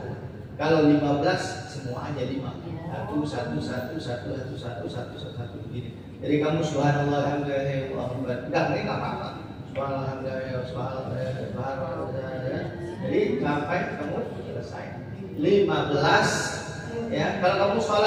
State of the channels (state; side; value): identical; both; correlation 1.00